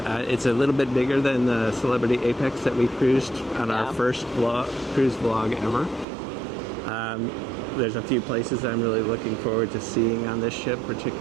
a little bit bigger than the Celebrity Apex that we cruised on our first cruise vlog ever. There's a few places I'm really looking forward to seeing on this ship,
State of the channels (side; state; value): left; drops out; at 6.1 s